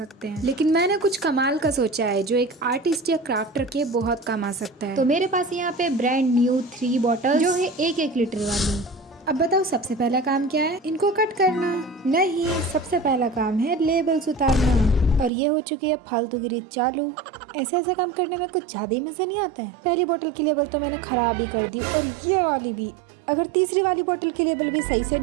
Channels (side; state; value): left; drops out; at 15.3 s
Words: हैं, लेकिन मैंने कुछ कमाल का सोचा है जो एक आर्टिस्ट या क्राफ्टर के बहुत काम आ सकता है। तो मेरे पास यहाँ पे ब्रांड न्यू 3 बॉटल जो है 1-1 लीटर वाली। अब बताओ सबसे पहला काम क्या है? इनको कट करना नहीं, सबसे पहला काम है लेबल्स उतारना। और ये हो चुकी है फालतूगिरी चालू। ऐसे ऐसे काम करने में कुछ ज्यादा ही मजा नहीं आता है। पहली बोतल की लेबल तो मैंने खराब ही कर दी और ये वाली भी। अगर तीसरी वाली बोतल की लेबल भी सही से